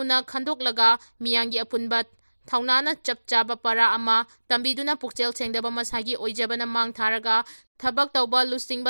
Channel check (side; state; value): both; inverted; correlation -1.00